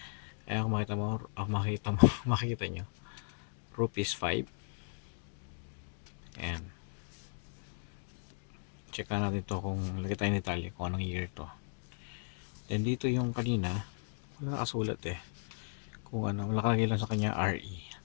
Ayan, kung makita mo, makikita nyo. Rupees 5. Ayan. Check na natin to kung lagay tayo ni Italy kung anong year to. Then dito yung kanina, wala nakasulat eh. Kung ano, nakalagay lang sa kanya RE.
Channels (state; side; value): silent; right; digital silence